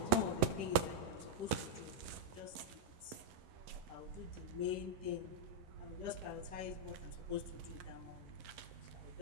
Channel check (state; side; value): late; left; 11 ms